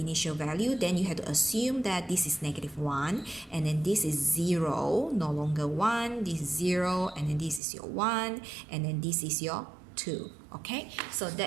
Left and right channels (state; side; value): drops out; left; at 7.6 s